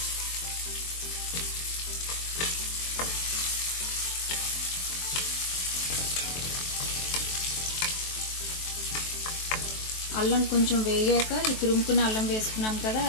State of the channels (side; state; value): right; late; 23 ms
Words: అల్లం కొంచెం వేగాక, ఈ తురుముకున్న అల్లం వేసుకున్నాం కదా,